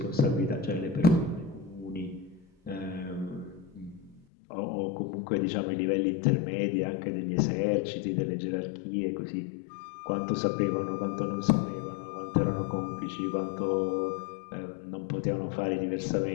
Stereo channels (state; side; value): drops out; right; at 4.2 s